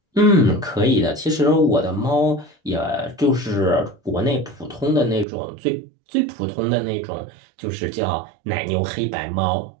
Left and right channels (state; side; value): drops out; left; at 5.2 s